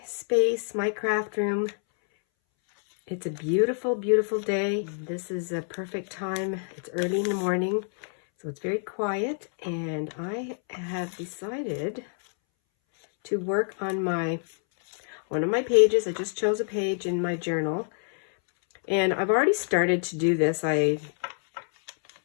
space, my craft room. It's a beautiful, beautiful day. This is a perfect time. It's early in the morning, so it's very quiet, and I have decided to work on one of my pages. I just chose a page in my journal, and I've already started to do this. I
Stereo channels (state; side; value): silent; right; 60 dB below the other